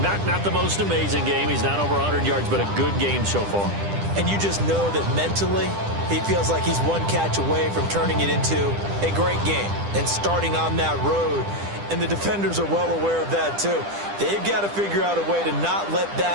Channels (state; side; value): late; left; 10 ms